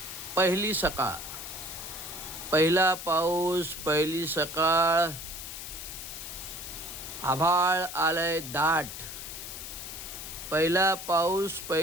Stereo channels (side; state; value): left; noise; hiss, 9 dB below the sound